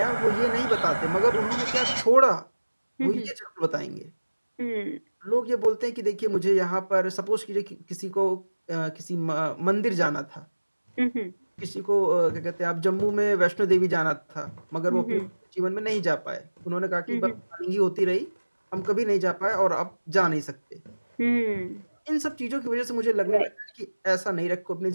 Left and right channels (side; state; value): both; inverted; correlation -1.00